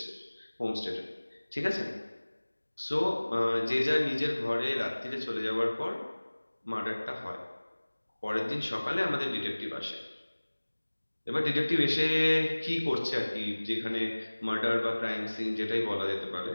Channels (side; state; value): both; inverted; correlation -1.00